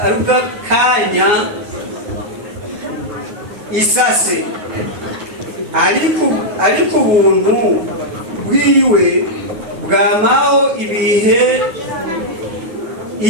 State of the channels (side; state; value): left; late; 9.5 ms